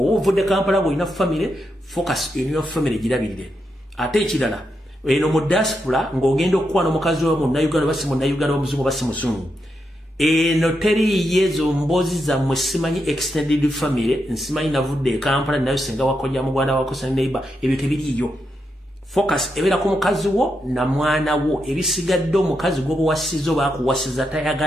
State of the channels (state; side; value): normal; both; correlation 0.84